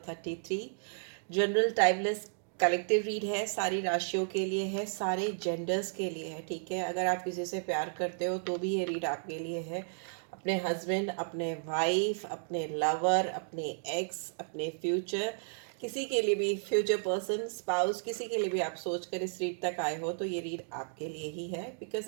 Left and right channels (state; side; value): silent; left; digital silence